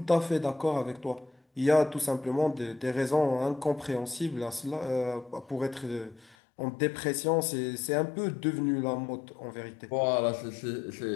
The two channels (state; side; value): drops out; right; at 6.4 s